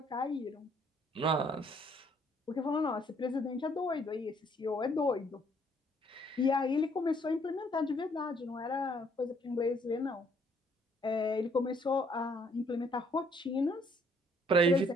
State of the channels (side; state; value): both; normal; correlation 0.65